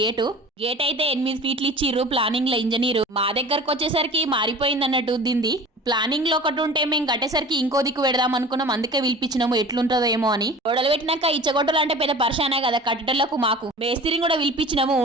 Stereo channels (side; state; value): both; normal; correlation 0.40